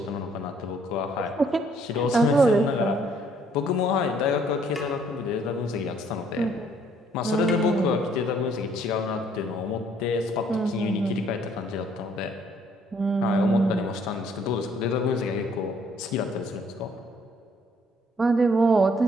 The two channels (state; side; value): normal; both; correlation 0.64